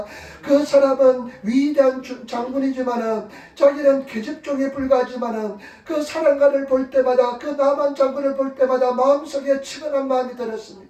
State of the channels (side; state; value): both; identical; correlation 1.00